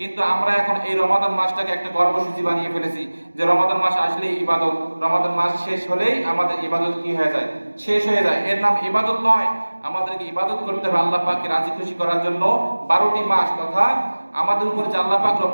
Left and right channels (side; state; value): both; inverted; correlation -1.00